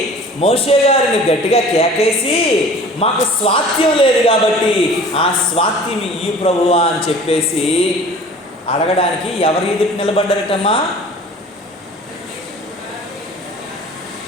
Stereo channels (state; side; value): normal; both; correlation 0.45